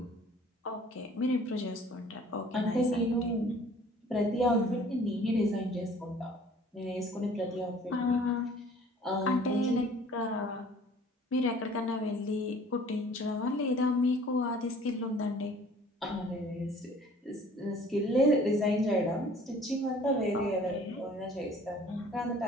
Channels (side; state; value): both; normal; correlation 0.52